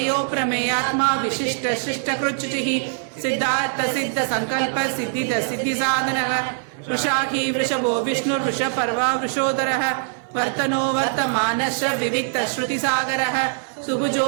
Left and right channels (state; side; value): silent; left; 64 dB below the other